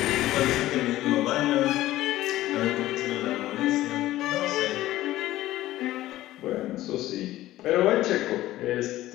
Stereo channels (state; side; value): quieter; right; 15.4 dB